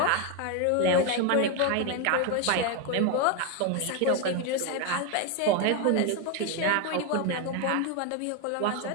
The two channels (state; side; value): different; both; correlation 0.02